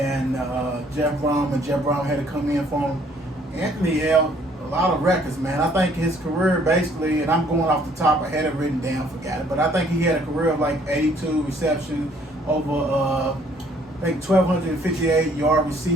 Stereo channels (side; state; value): both; normal; correlation 0.62